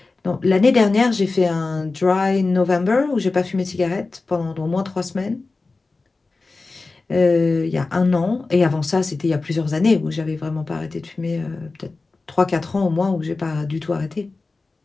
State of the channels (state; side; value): quieter; right; 3.7 dB